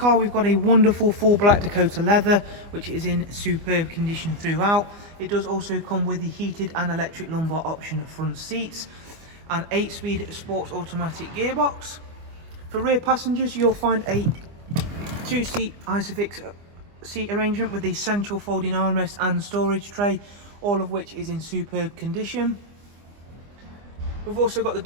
we've got a wonderful full black Dakota leather, which is in superb condition throughout. It does also come with the heated and electric lumbar option front seats, an 8-speed sports automatic gearbox. For rear passengers, you'll find a 2-seat Isofix seat arrangement with the central folding armrest and storage tray, all of which is in superb condition. We've also got the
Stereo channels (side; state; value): left; late; 25 ms